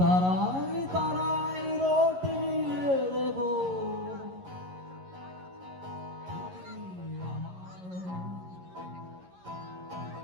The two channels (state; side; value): late; left; 11 ms